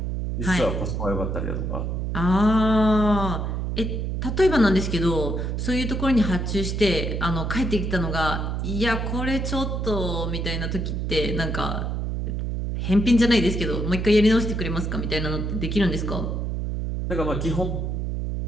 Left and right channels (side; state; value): right; noise; hum, 2 dB below the sound